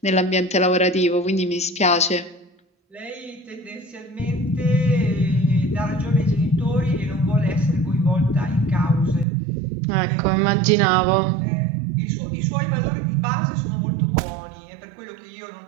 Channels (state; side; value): drops out; left; at 9.2 s